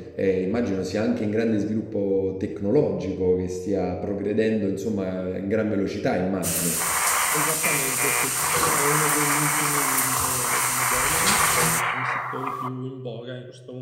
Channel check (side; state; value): both; identical; correlation 1.00